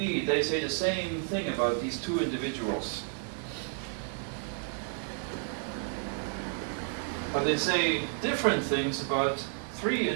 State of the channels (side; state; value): left; silent; 57 dB below the other